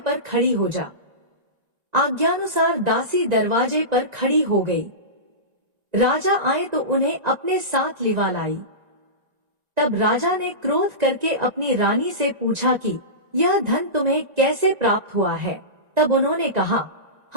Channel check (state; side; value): late; left; 1.9 ms